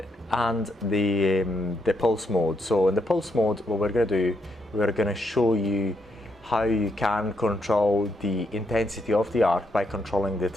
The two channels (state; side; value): normal; both; correlation 0.78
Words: and the pulse mode. So in the pulse mode, what we're going to do, we're going to show you how you can control the intensity of the arc by controlling the